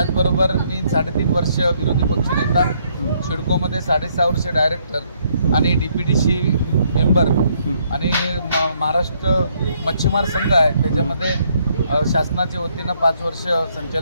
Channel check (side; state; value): both; inverted; correlation -0.70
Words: मी 3.5 वर्ष विरोधी पक्षनेता, सिडकोमध्ये 6.5 वर्ष डायरेक्टर आणि DPTC मेंबर आणि महाराष्ट्र मच्छीमार संघ आहे, त्याच्यामध्ये शासनाच्या वतीनं 5 वर्ष